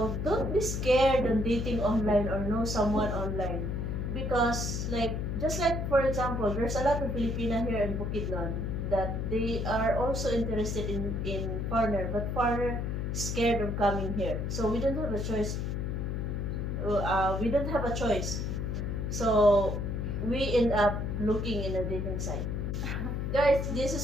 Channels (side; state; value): left; noise; hum, 2 dB below the sound